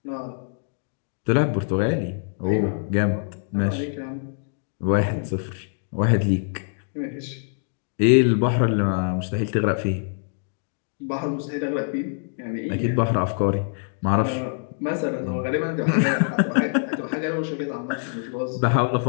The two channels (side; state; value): right; silent; digital silence